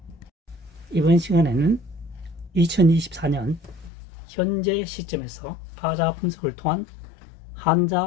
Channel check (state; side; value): drops out; right; at 3.9 s